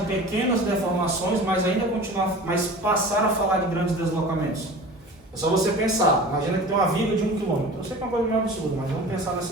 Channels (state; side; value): normal; both; correlation 0.38